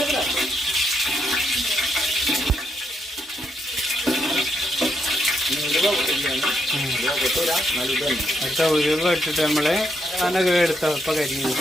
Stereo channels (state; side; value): normal; both; correlation 0.78